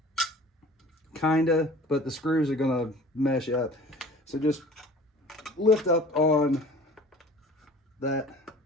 kinda, but the screws are gonna mesh up. So just lift up on that,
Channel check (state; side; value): normal; both; correlation 0.45